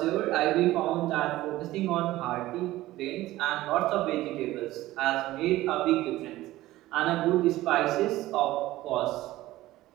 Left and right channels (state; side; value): quieter; left; 16.5 dB